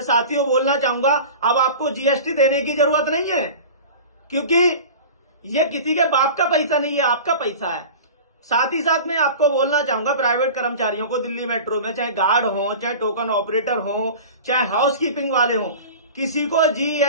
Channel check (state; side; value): inverted; both; correlation -0.36